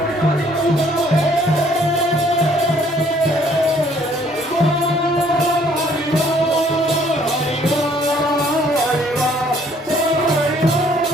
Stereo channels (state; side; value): normal; both; correlation 0.62